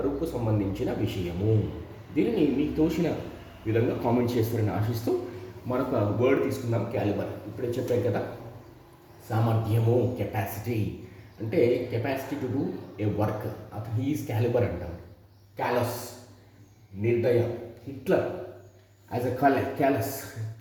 సంబంధించిన విషయము. దీనిని మీకు తోచిన విధంగా కామెంట్ చేస్తారని ఆశిస్తూ మరొక వర్డ్ తీసుకుందాం, క్యాలిబర్. ఇప్పుడే చెప్పాం కదా, సామర్థ్యము, కెపాసిటీ. అంటే capacity to do a work, అతను హీఈస్ క్యాలిబర్ అంటాం. క్యాలస్, నిర్దయ. Hitler as a callous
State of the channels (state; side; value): identical; both; correlation 1.00